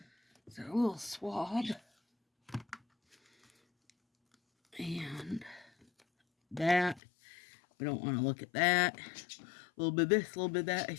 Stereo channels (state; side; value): drops out; right; at 7.0 s